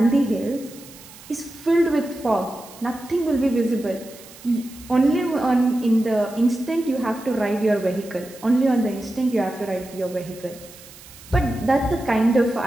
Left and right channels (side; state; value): right; noise; hiss, 20 dB below the sound